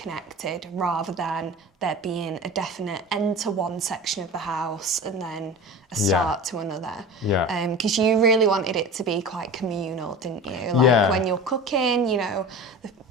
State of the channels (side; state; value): both; normal; correlation 0.33